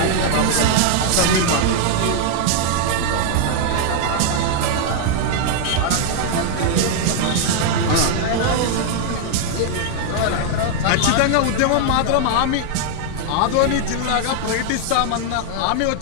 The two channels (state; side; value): different; both; correlation 0.00